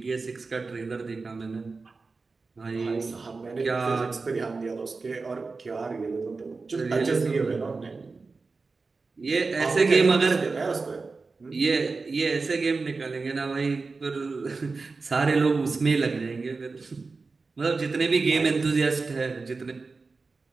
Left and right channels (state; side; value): quieter; left; 4.1 dB